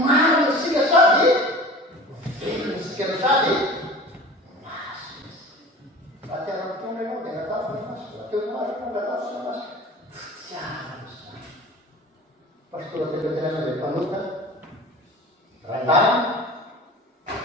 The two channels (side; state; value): both; normal; correlation 0.39